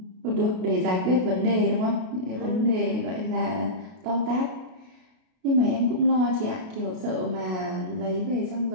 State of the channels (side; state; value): left; late; 32 ms